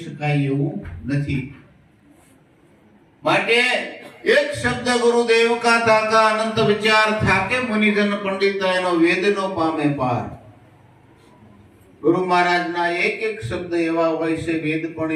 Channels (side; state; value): both; identical; correlation 1.00